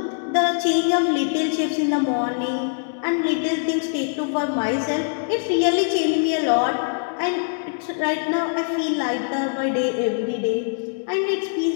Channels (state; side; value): silent; right; digital silence